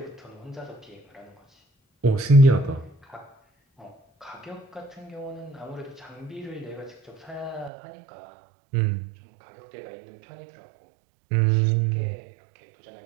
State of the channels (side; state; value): left; drops out; at 7.7 s